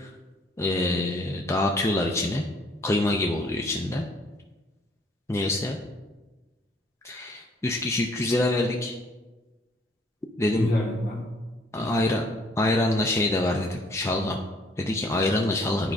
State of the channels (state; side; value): normal; both; correlation 0.61